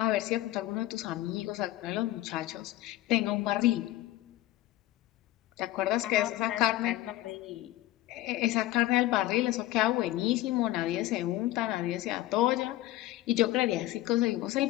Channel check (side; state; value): right; quieter; 16.0 dB